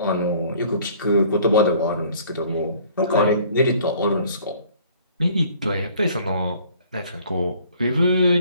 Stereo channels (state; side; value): inverted; both; correlation -0.55